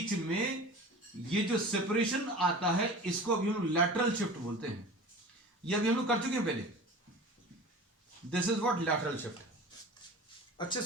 में ये जो सेपरेशन आता है इसको अभी हम लैटरल शिफ्ट बोलते हैं। ये अभी हम लोग कर चुके हैं पहले। This is what lateral shift. अच्छे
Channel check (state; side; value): normal; both; correlation 0.37